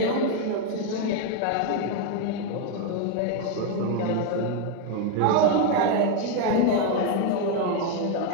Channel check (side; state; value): both; different; correlation 0.01